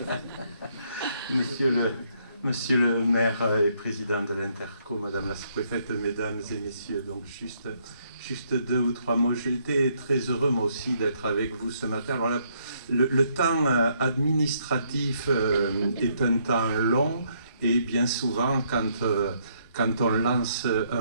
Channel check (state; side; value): inverted; both; correlation -0.71